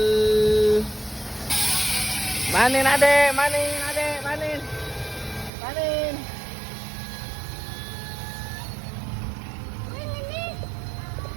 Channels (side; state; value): left; drops out; at 5.5 s